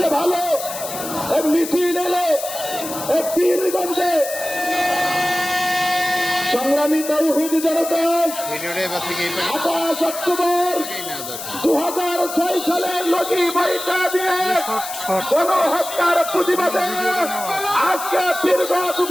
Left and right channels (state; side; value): noise; left; hiss, 9 dB below the sound